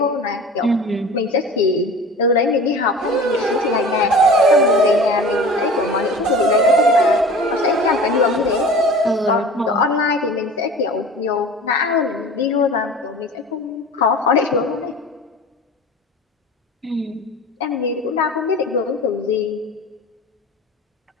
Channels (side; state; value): both; normal; correlation 0.39